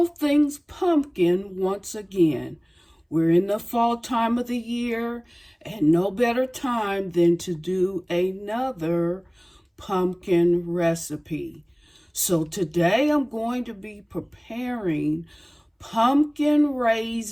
Things Pumpkin once again. We're in the fall time of the year, and no better time than to do another pumpkin recipe. So today I'm going to be preparing pumpkin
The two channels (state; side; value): identical; both; correlation 1.00